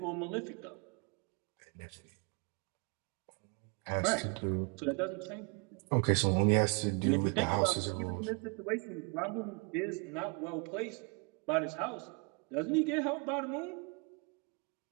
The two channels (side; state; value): left; quieter; 34.7 dB